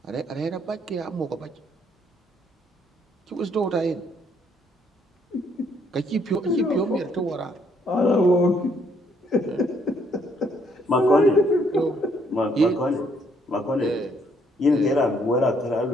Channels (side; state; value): both; normal; correlation 0.68